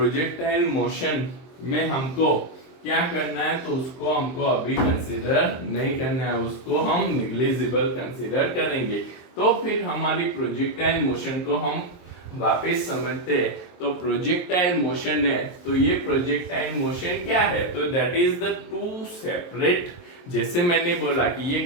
मोशन में हमको क्या करना है, तो उसको हमको अभी कंसीडर नहीं करना है, उसको हम निग्लिजिबल कंसीडर करेंगे। तो फिर हमारी प्रोजेक्टाइल मोशन को हम वापस समझते हैं। तो प्रोजेक्टाइल मोशन है, तो ये प्रोजेक्टाइल मोशन क्या है, तो that is the two separate, जैसे मैंने बोला कि ये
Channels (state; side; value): late; right; 23 ms